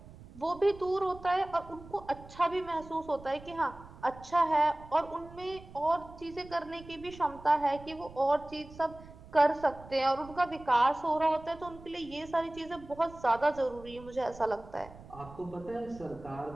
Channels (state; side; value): noise; right; rumble, 18 dB below the sound